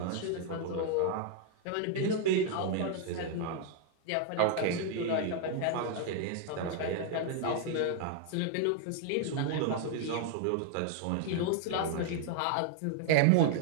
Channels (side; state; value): both; different; correlation 0.00